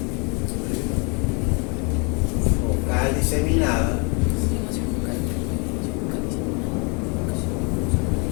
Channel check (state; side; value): quieter; right; 33.4 dB